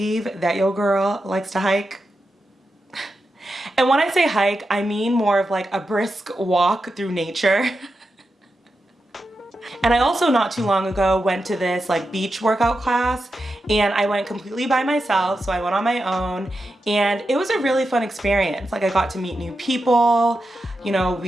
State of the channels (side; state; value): both; normal; correlation 0.88